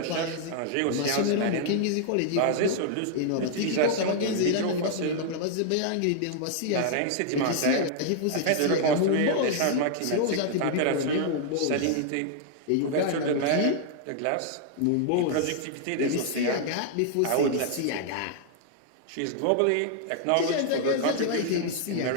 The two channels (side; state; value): both; different; correlation 0.00